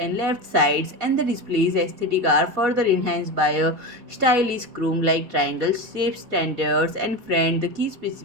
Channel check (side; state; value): left; late; 4.1 ms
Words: left sides, and the display's aesthetic are further enhanced by a stylish chrome-like triangle shape standards. And friend, the key